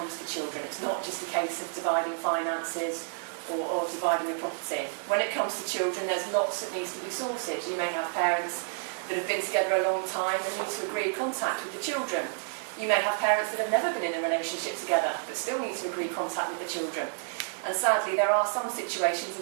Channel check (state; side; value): silent; left; digital silence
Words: to children. It's not just a case of dividing finances or dividing a property. When it comes to children, there's lots that needs to be sorted. You may have parents that have been together a long time and need to agree contact with the children. You may have parents that have never been in a relationship together but still need to agree contact with the children. And sadly, there are some situations